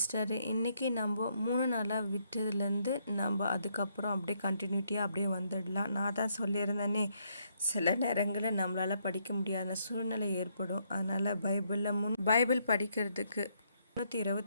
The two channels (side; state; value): both; inverted; correlation -0.74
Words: இன்றைக்கி நம்ம 3 நாளாக விட்டதுலேருந்து நம்ம அதுக்கப்புறம் அப்படியே கண்டினியூட்டியாக அப்படியே வந்துடலாம். நான் தான் சொல்லியிருந்தேனே, சில நேரங்களில் நம்மளால் படிக்க முடியாத சூழ்நிலை ஏற்படும். அதனால் பைபிள் படிக்கிறதுக்கு